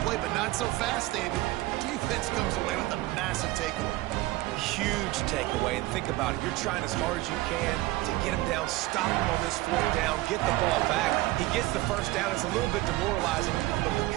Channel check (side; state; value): left; quieter; 18.8 dB